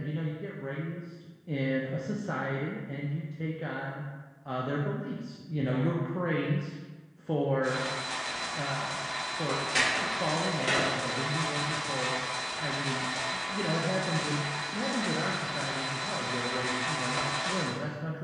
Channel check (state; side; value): identical; both; correlation 1.00